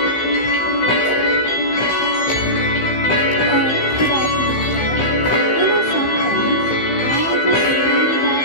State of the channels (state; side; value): late; right; 15 ms